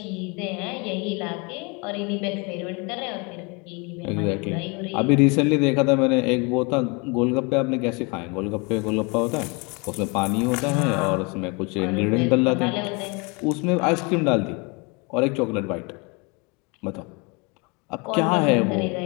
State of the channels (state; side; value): quieter; right; 30.0 dB